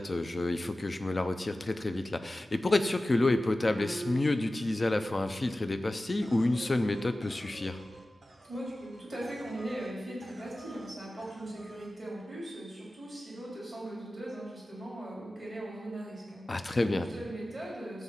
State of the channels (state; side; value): normal; both; correlation 0.95